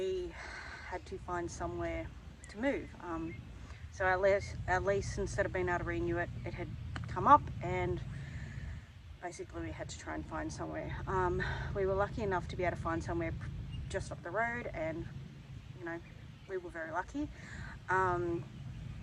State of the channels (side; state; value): both; identical; correlation 1.00